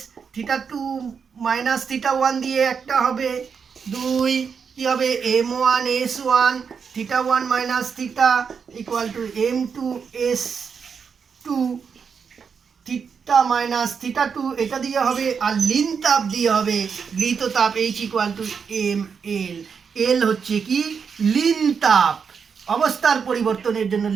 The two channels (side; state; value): left; quieter; 6.2 dB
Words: θ2 - θ1 দিয়ে একটা হবে। 2 কি হবে? m1 s1 θ1 - θ = m2 s2 θ - θ2, এটা দিয়ে হবে। আর লিন তাপ দিয়ে হবে গৃহীত তাপ H = ml। এল হচ্ছে কি? লিন তাপ। অবস্থার পরিবর্তনের জন্য